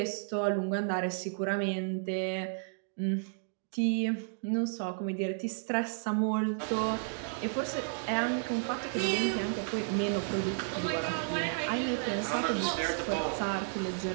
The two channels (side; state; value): left; silent; digital silence